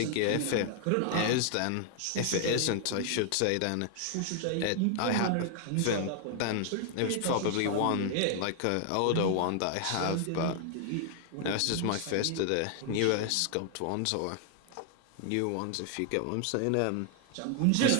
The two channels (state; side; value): different; both; correlation 0.00